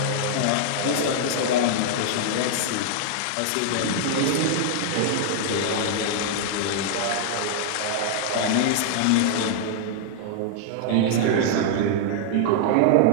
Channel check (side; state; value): both; different; correlation -0.01